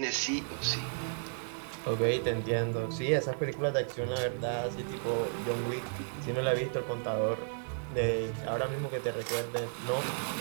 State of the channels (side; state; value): left; silent; digital silence